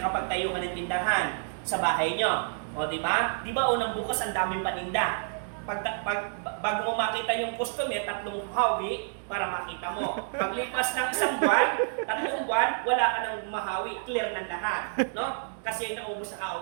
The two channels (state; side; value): silent; left; 59 dB below the other